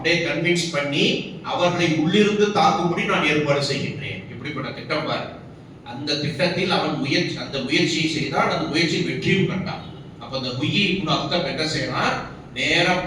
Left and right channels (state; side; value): identical; both; correlation 1.00